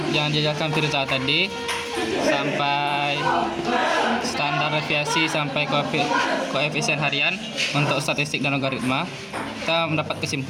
dijelaskan Firza tadi sampai standar deviasi sampai koefisien harian untuk statistik dan logaritma, kita mendapat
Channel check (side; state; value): both; identical; correlation 1.00